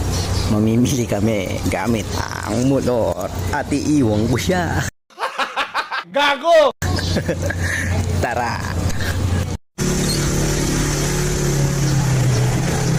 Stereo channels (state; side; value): identical; both; correlation 1.00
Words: Mamimili kami gamit ang motor at iiwang ko siya. Gago! Tara!